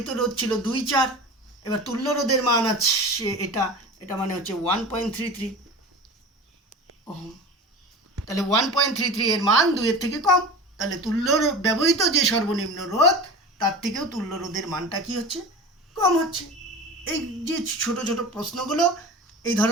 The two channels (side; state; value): both; normal; correlation 0.33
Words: রোধ ছিল 2, 4, এবার তুল্য রোধের মান আছে এটা মানে হচ্ছে 1.33 ওহম। তাহলে 1.33 এর মান 2 এর থেকে কম, তাহলে ব্যবহৃত যে সর্বনিম্ন রোধ, তার থেকেও তুল্য রোধের মানটা কি হচ্ছে, কম হচ্ছে। এই যে ছোট ছোট প্রশ্নগুলো এই